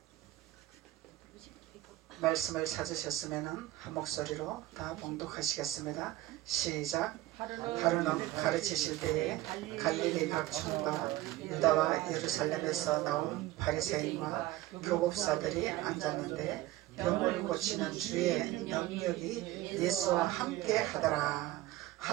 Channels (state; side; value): quieter; left; 16.3 dB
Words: 말씀을 찾으셨으면 한 목소리로 다 봉독하시겠습니다. 시작. 하루는 가르치실 때에 갈릴리 각 촌과 유다와 예루살렘에서 나온 바리새인과 교법사들이 앉았는데 병을 고치는 주의 능력이 예수와 함께 하더라.